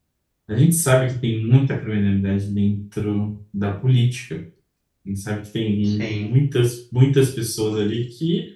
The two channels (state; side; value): identical; both; correlation 1.00